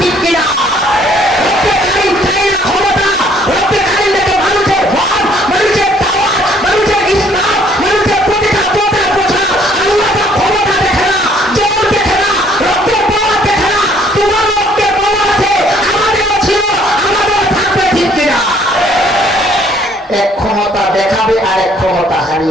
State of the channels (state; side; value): normal; both; correlation 0.62